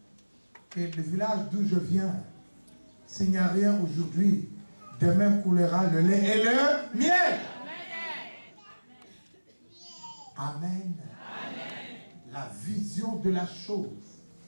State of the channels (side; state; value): both; inverted; correlation -1.00